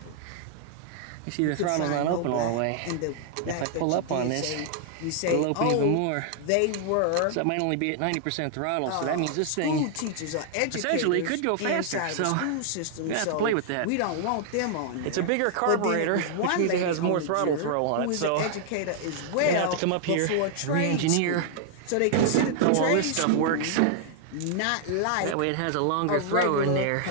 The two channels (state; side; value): different; both; correlation -0.01